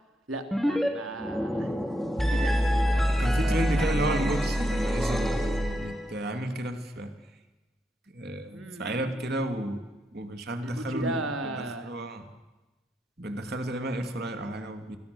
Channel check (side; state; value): both; normal; correlation 0.82